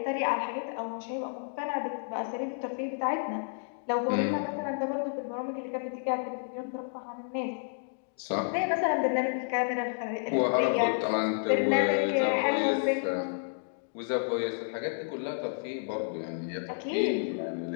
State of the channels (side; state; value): right; silent; digital silence